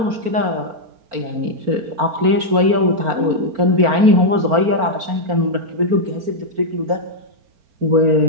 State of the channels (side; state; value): left; late; 4.4 ms